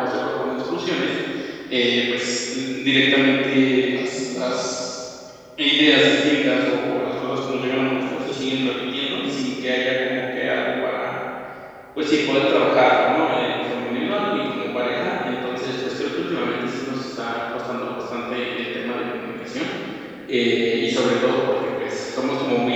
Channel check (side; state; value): both; identical; correlation 1.00